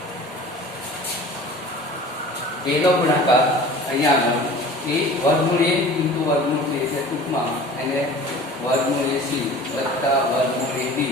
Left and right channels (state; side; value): normal; both; correlation 0.42